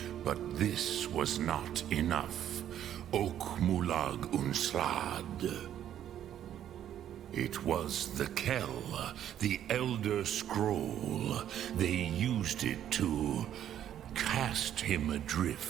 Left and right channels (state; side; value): quieter; left; 10.7 dB